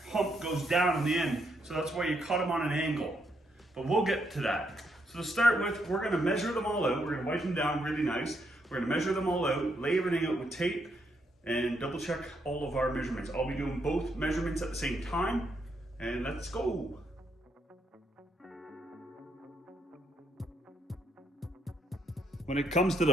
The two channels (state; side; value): normal; both; correlation 0.77